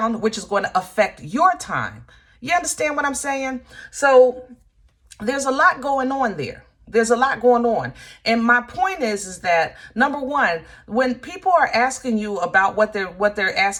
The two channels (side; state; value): both; identical; correlation 1.00